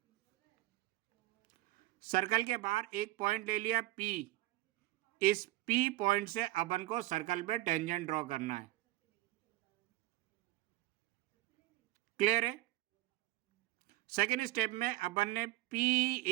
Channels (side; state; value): left; quieter; 17.2 dB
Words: सर्कल के बाहर एक पॉइंट ले लिया P। इस P पॉइंट से अपन को सर्कल पे टेंजेंट ड्रॉ करना है। क्लियर है? सेकेंड स्टेप में अपन ने